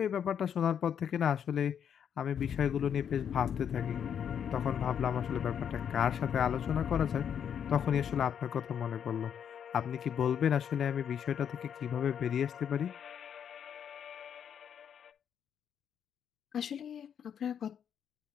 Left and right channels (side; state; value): right; quieter; 8.3 dB